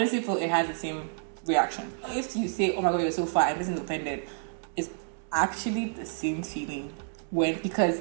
feel it has the same reaction. If you say, oh my god, you're so fat, and this is offended, it's actually the same feeling. Because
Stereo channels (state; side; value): silent; left; digital silence